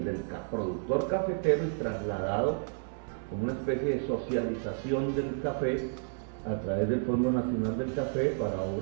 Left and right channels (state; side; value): silent; left; 57 dB below the other